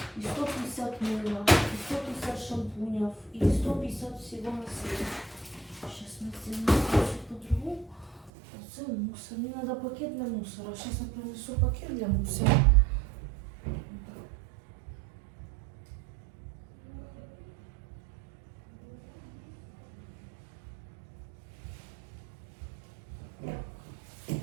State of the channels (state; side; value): drops out; left; at 8.3 s